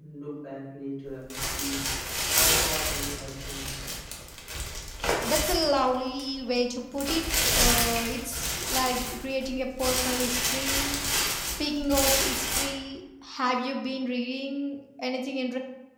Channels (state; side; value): identical; both; correlation 1.00